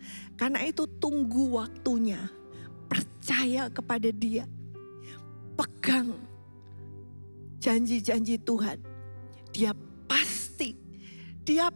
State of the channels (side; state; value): both; inverted; correlation -1.00